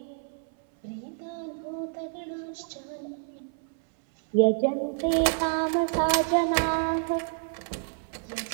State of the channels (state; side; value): silent; left; 59 dB below the other